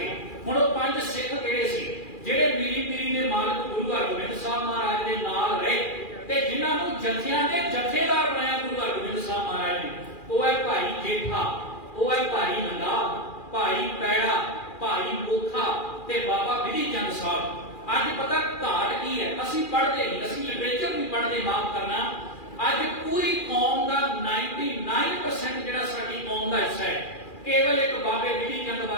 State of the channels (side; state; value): right; late; 2.4 ms